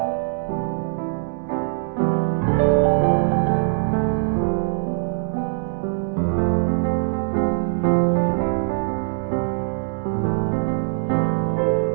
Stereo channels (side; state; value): left; silent; digital silence